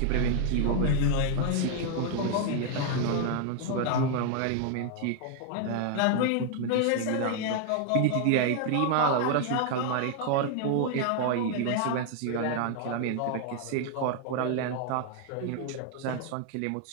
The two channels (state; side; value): different; both; correlation 0.00